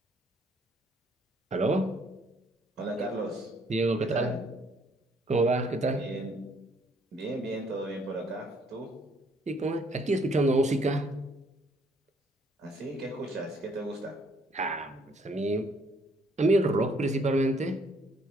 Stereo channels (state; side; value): normal; both; correlation 0.65